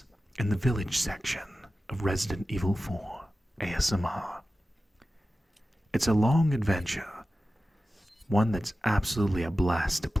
in the village section of Resident Evil 4 ASMR. It's a long adventure, one that's absolutely a blast to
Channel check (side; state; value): both; normal; correlation 0.94